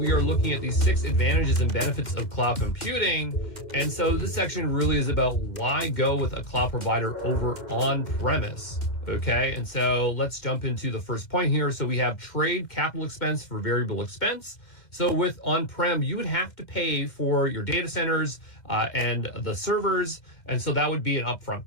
are looking at the 6 advantages and benefits of cloud computing. And so this section really is about why go with a cloud provider over on-premise. Okay, and so let's jump into the first point here. So we have trade capital expense for variable expense. So with on-prem, you would have to pay for your data centers and the servers. And so that would be an upfront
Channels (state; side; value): late; right; 2.1 ms